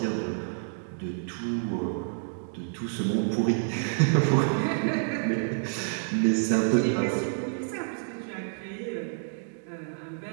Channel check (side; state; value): left; silent; digital silence